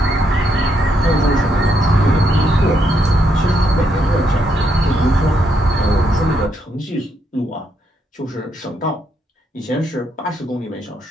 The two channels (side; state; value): both; normal; correlation 0.77